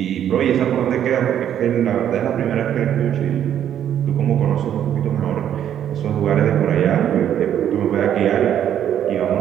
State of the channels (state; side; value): quieter; left; 10.0 dB